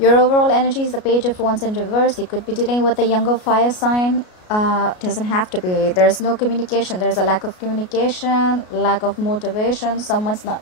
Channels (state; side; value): late; right; 33 ms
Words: overall energy is the Page of Wands in reverse. You could be dealing with a younger fire sign. Doesn't have to be. There's no communication. There's a lack of communication, lack of motivation. Someone's not